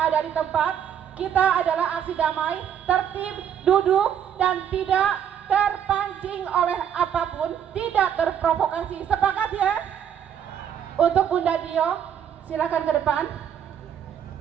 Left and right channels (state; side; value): quieter; left; 9.0 dB